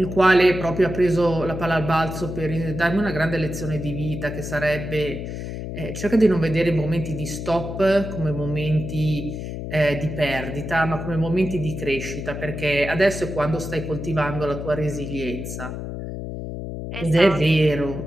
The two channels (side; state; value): left; noise; hum, 7 dB below the sound